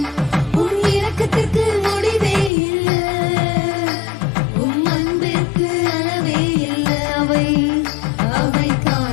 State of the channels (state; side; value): drops out; right; at 2.5 s